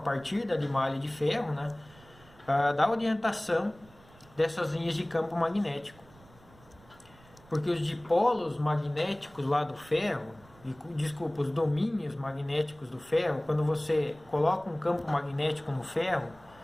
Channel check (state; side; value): noise; right; rumble, 25 dB below the sound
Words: da limalha de ferro, né, da orientação dessas linhas de campo magnético. Porque os dipolos magnéticos lá do ferro, desculpa, os domínios magnéticos do ferro, quando você coloca um campo magnético no ferro,